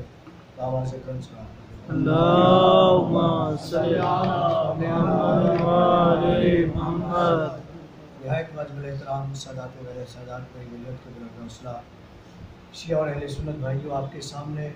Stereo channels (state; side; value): identical; both; correlation 1.00